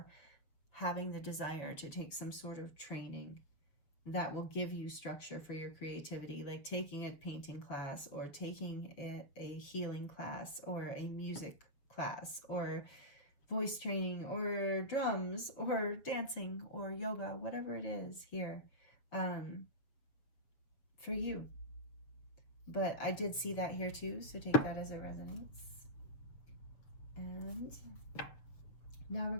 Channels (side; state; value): right; late; 7.0 ms